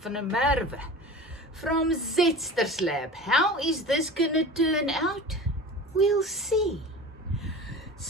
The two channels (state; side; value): normal; both; correlation 0.35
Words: van der Merwe from Zetster's Lab. How is this gonna turn out? We'll see.